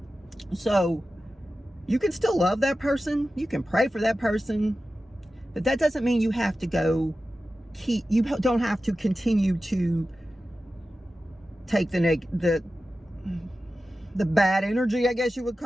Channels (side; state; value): both; normal; correlation 0.94